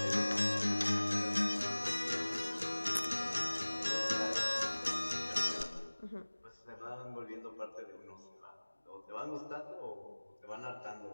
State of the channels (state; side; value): inverted; both; correlation -1.00